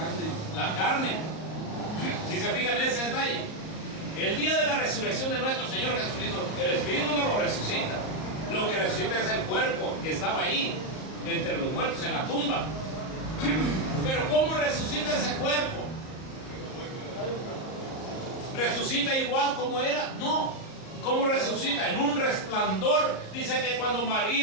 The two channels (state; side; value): late; right; 38 ms